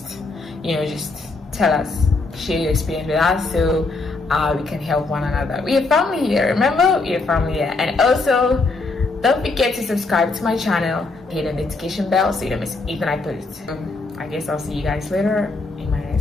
tell us, share your experience with us, so we can help one another. We are family here, remember? We are family here. And also, don't forget to subscribe to my channel, hit the notification bell so you don't miss anything I post. I guess I'll see you guys later in my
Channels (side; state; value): right; quieter; 3.6 dB